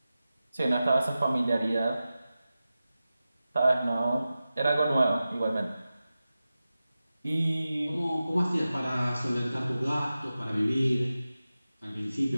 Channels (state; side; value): inverted; both; correlation -0.94